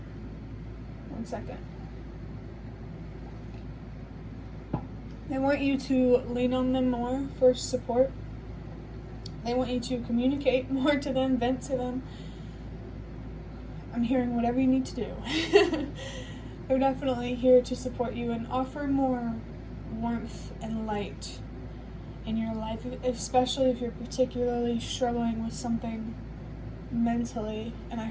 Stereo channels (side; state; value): both; identical; correlation 1.00